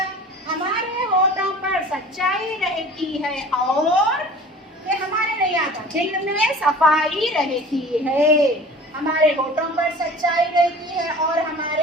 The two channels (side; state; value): both; normal; correlation 0.43